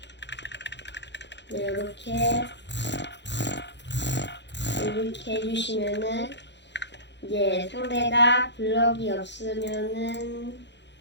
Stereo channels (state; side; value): late; right; 0.51 ms